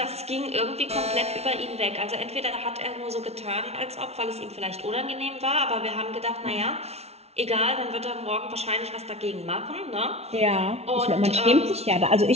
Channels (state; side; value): late; left; 0.31 ms